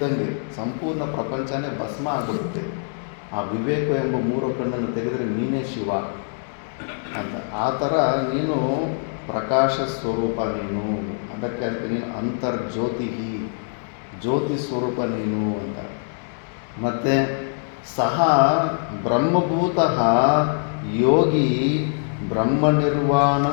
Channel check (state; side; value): silent; right; digital silence